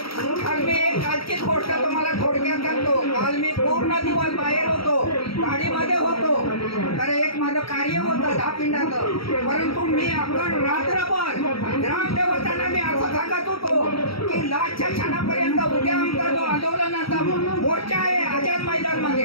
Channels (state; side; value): late; right; 0.75 ms